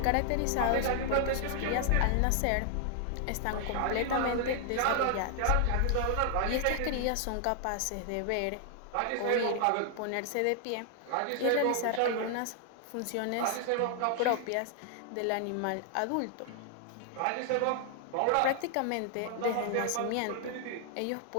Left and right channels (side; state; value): both; different; correlation 0.00